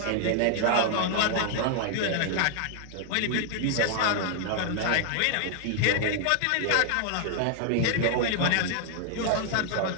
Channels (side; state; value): both; different; correlation 0.00